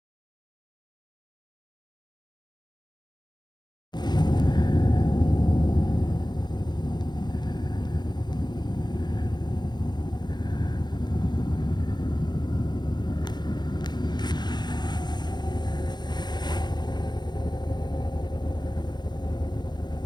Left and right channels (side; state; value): right; late; 0.21 ms